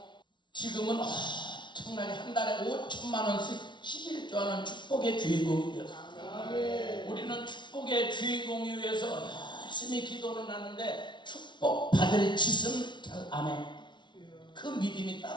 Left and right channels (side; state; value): right; late; 0.23 ms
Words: 지금은 엄청나게 한 달에 5천만 원씩 11조 하는 축복의 주인공이에요. 우리는 축복의 주인공이 위해서 열심히 기도는 하는데 축복 받을 짓은 잘 안 해. 그 믿음이